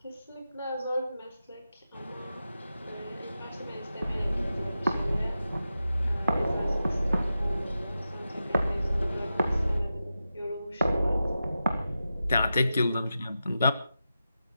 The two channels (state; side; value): inverted; both; correlation -0.91